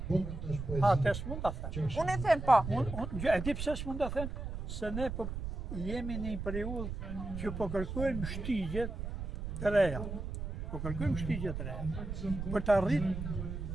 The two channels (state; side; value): noise; right; rumble, 6 dB below the sound